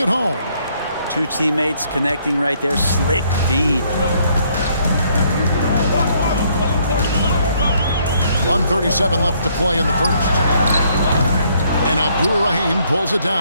home. 2 teammates connecting right there. Slick feed. 1:37 left to play in the first. And Abdur-Rahim pulls it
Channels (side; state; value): both; inverted; correlation -0.68